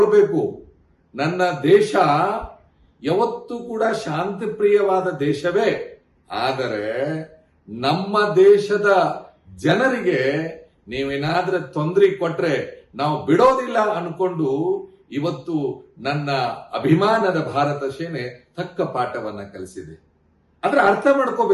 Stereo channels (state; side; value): identical; both; correlation 1.00